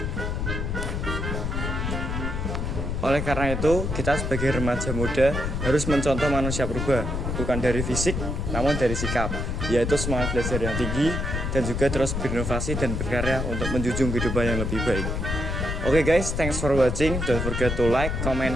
oleh karena itu kita sebagai remaja muda harus mencontoh manusia purba, bukan dari fisik namun dari sikap, yaitu semangat belajar yang tinggi dan juga terus berinovasi dan berkarya untuk menjunjung kehidupan yang lebih baik. Oke guys, thanks for watching. Don't forget to like, comment,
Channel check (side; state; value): left; noise; rumble, 2 dB below the sound